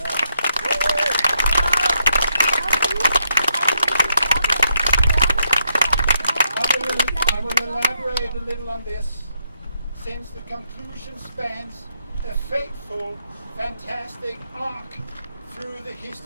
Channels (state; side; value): inverted; both; correlation -0.78